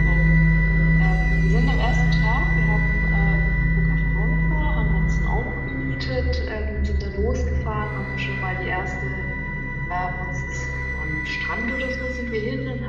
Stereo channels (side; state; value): both; identical; correlation 1.00